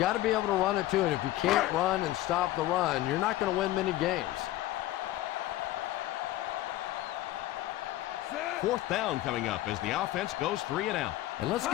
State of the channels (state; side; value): quieter; right; 15.4 dB